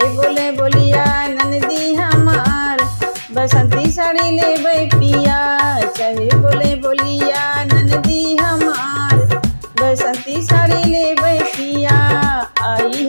बोले बोलिया ननदी हमार, बसंती साड़ी ले पिया। चाहे बोले बोलिया ननदी हमार, बसंती साड़ी ले पिया। आई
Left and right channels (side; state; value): both; inverted; correlation -1.00